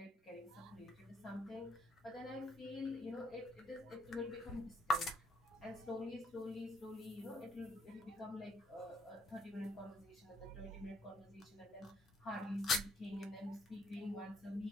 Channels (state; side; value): normal; both; correlation 0.67